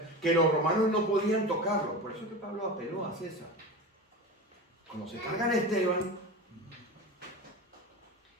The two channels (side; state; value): both; normal; correlation 0.28